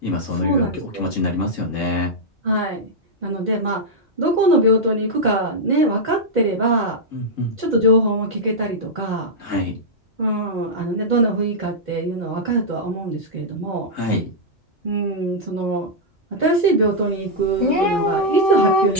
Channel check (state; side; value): normal; both; correlation -0.06